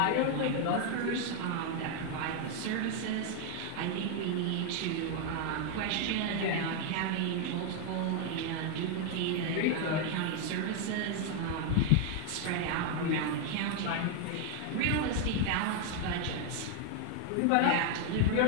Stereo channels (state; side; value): different; both; correlation 0.00